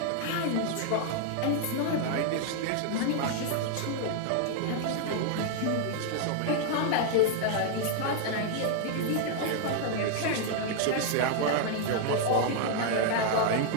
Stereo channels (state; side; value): different; both; correlation 0.00